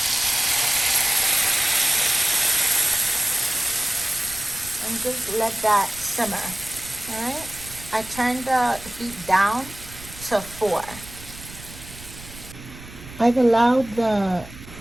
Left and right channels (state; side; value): noise; right; rumble, 16 dB below the sound